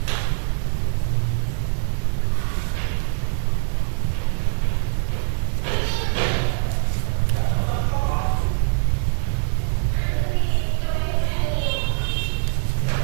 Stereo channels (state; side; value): silent; left; 64 dB below the other